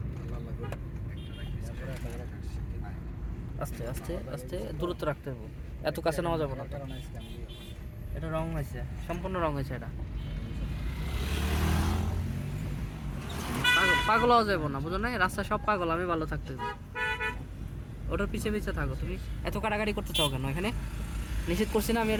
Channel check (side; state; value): both; identical; correlation 1.00